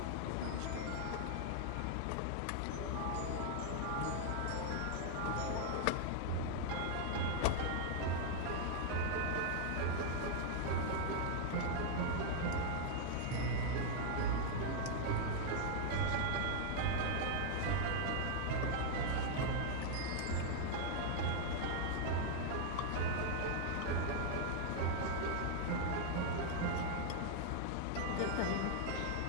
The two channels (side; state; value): both; different; correlation -0.01